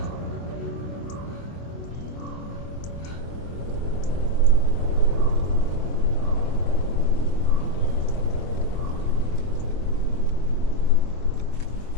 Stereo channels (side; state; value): right; late; 24 ms